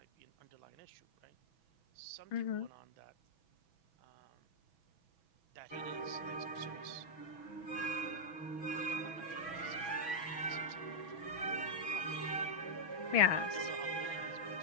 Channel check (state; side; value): late; right; 6.1 ms